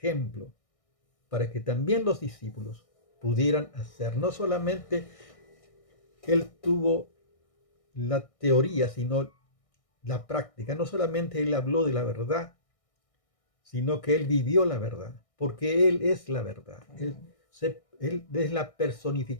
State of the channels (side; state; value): right; late; 1.6 ms